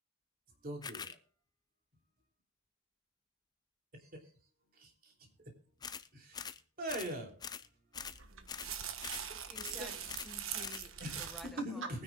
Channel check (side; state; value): both; normal; correlation 0.12